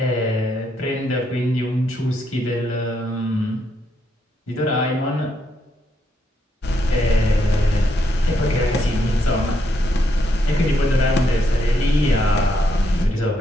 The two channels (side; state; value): both; normal; correlation 0.77